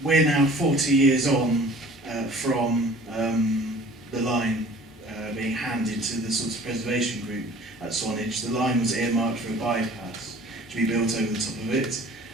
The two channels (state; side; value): normal; both; correlation 0.48